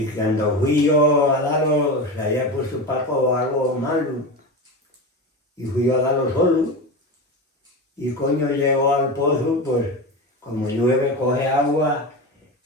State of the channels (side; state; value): both; normal; correlation 0.23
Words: cuando fui yo a darlo, se había puesto Paco algo malo, y fui yo a darlo solo, y coño llegó al pozo, pues como llueve coge agua,